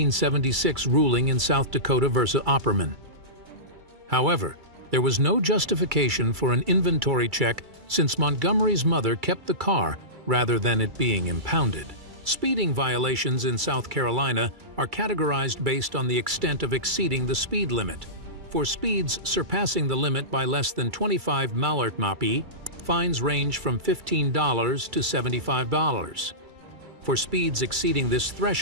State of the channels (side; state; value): left; late; 2.3 ms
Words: ruling in South Dakota versus Opperman. However, there was no justification for an inventory check since Montgomery's mother kept the car rather than it being impounded. Speeding violations in South Carolina are categorized based on the extent of exceeding the speed limit. For speeds surpassing the limit by less than 25 mph, fines range from $15 to $75. For speeds exceeding this